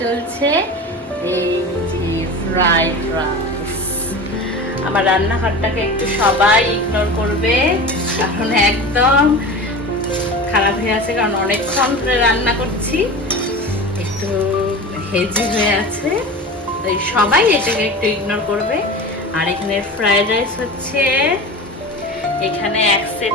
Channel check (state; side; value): normal; both; correlation 0.31